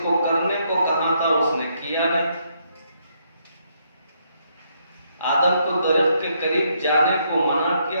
کو کرنے کو کہا تھا اس نے کیا نہیں۔ آدم کو درخت کے قریب جانے کو منع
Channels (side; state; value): both; inverted; correlation -0.74